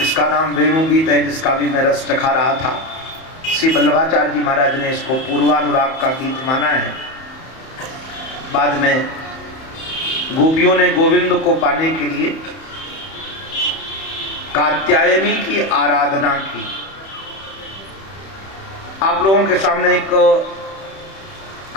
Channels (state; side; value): late; right; 31 ms